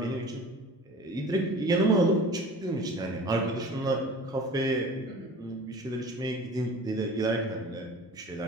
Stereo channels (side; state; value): both; normal; correlation 0.42